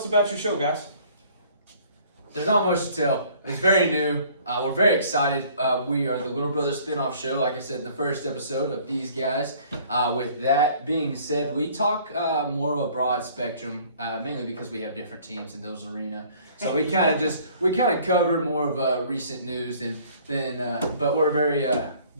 about your show, guys. There's not much to tell. It's very new. We're very excited. We are the Little Brother spinoff show, like I said in the first episode of these guys. With that being said, we talk more of a broad spectrum, mainly because we have different teams in those arena. So we kind of cover more of recent news but we're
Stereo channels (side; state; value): both; inverted; correlation -0.55